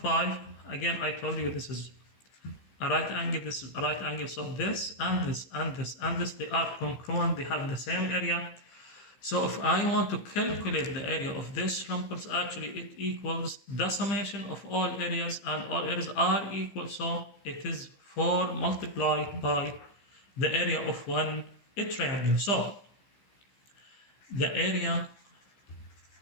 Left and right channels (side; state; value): right; late; 15 ms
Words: 5. Again, I told you this is a right angle, this is a right angle. So this and this and this and this, they are congruent. They have the same area. So if I want to calculate the area of this rhombus, actually it equals the summation of all areas, and all areas are equal. So it is 4 multiplied by the area of one triangle. So the area